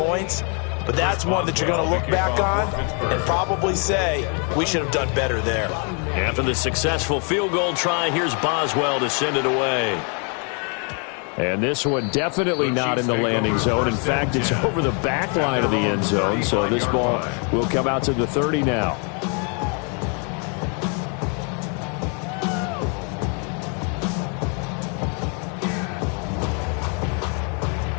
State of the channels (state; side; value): quieter; right; 38.0 dB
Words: but that's one that you're going to look back on and probably say, we should have done better there. After the successful field goal try, here's Boswell to send it away. And this one definitely not in the landing zone. In fact, it's over the back line of the end zone, so this ball will come out to the 30 now.